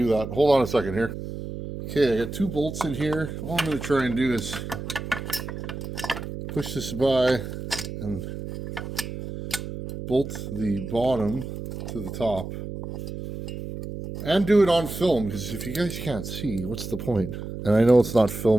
that. Hold on a second here. Okay, I got 2 bolts in here. All I'm going to try and do is push this by and bolt the bottom to the top. And do it on film, because if you guys can't see, what's the point? And I know it's not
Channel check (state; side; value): noise; right; hum, 8 dB below the sound